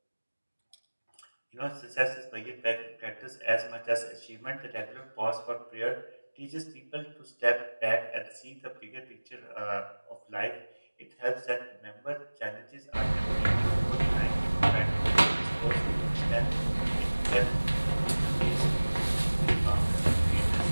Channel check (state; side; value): inverted; both; correlation -1.00